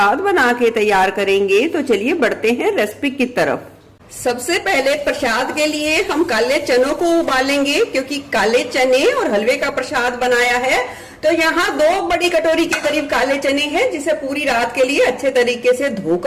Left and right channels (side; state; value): both; identical; correlation 1.00